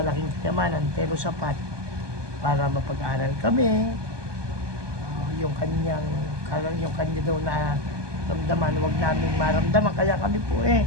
kayamanan pero sapat para mapag-aral kami. Yung kanya daw na ramdaman, wag namin maramdaman, kaya kami po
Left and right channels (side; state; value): left; late; 1.2 ms